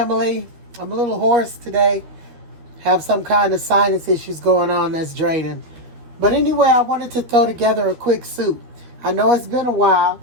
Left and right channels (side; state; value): left; late; 13 ms